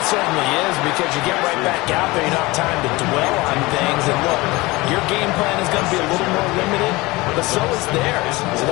it certainly is because you get right back out there. You don't have time to dwell on things. And look, your game plan is going to be a little more limited, but so is theirs. So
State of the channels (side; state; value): right; quieter; 21.8 dB